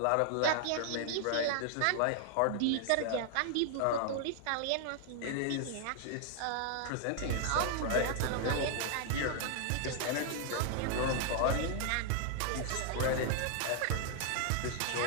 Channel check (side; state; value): both; different; correlation 0.00